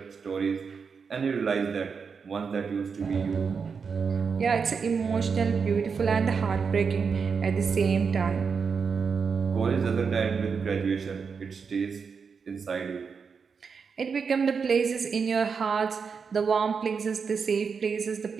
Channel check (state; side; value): quieter; left; 5.7 dB